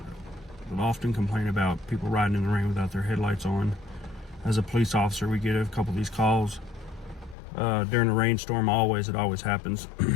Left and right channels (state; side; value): drops out; right; at 7.4 s